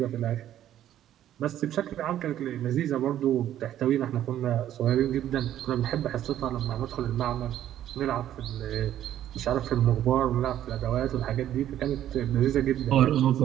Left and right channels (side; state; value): left; quieter; 11.7 dB